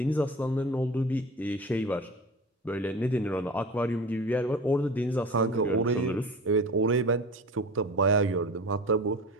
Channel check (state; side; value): normal; both; correlation 0.35